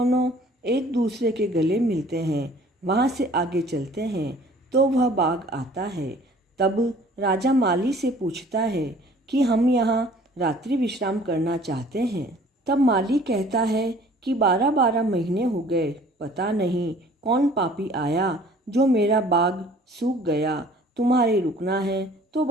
एक दूसरे के गले मिलते हैं। वहाँ से आगे चलते हैं तो वह बाग आता है। तब राजा माली से पूछता है कि हम यहाँ रात्रि विश्राम करना चाहते हैं। तब माली कहता है कि 12-12 महीने हो गए, पता नहीं कौन पापी आया जो मेरा बाग सूख गया। तुम्हारे रुकना है तो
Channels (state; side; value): normal; both; correlation 0.52